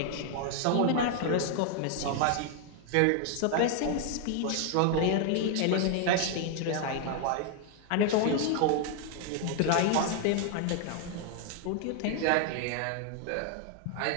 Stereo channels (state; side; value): different; both; correlation 0.00